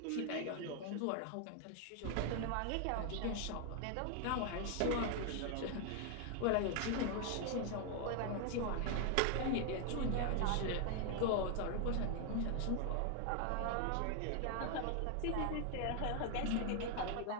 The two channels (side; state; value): both; different; correlation 0.00